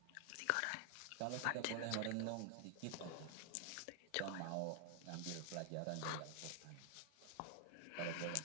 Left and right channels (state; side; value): different; both; correlation 0.00